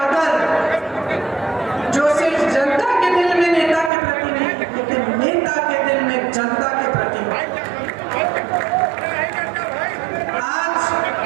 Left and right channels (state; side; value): drops out; left; at 3.9 s